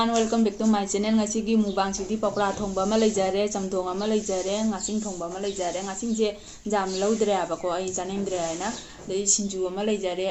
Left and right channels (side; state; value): both; identical; correlation 1.00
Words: welcome back to my channel. ꯉꯁꯤꯒꯤ ꯃꯨꯛꯕꯥꯡꯁꯤꯗꯤ ꯄꯀꯣꯔꯥ ꯊꯣꯡꯕ ꯑꯃ ꯂꯩꯖꯔꯦ, ꯆꯝꯊꯣꯡ ꯑꯃ ꯂꯩꯖꯔꯦ, ꯉꯥꯆꯤꯡ ꯊꯣꯡꯕ ꯑꯃ ꯂꯩꯖꯔꯦ. ꯉꯥꯆꯤꯡꯁꯦ ꯌꯥꯝ ꯂꯧꯗ꯭ꯔꯦ ꯍꯥꯏꯕꯀꯣ, ꯑꯩ ꯆꯥꯅꯤꯡꯗ꯭ꯔꯦ ꯍꯥꯏꯅ. ꯑꯗꯩ ꯁꯤꯡꯖꯨ ꯑꯃ ꯂꯩꯖꯔꯦ.